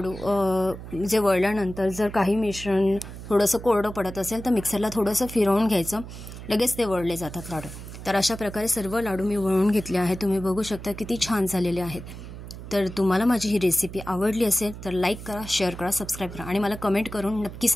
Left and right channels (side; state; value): right; noise; hum, 12 dB below the sound